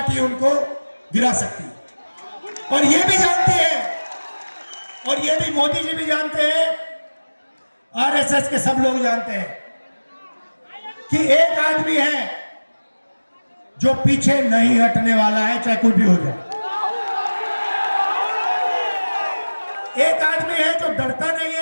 उनको गिरा सकती है। और ये भी जानती है, और ये भी मोदी जी भी जानते हैं, आरएसएस के सब लोग जानते हैं कि एक आदमी है जो पीछे नहीं हटने वाला है, चाहे कुछ भी हो जाए। एक आदमी है जो डरता नहीं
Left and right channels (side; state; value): both; inverted; correlation -1.00